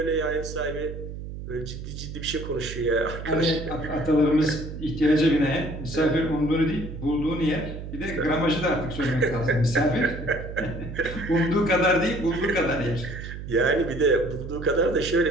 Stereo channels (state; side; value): noise; right; hum, 9 dB below the sound